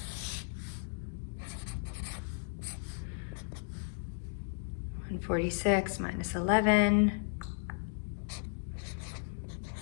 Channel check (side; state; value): right; silent; digital silence